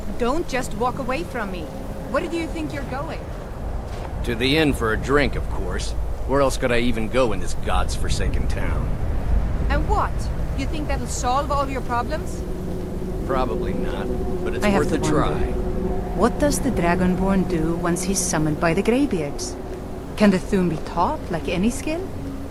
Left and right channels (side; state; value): both; identical; correlation 1.00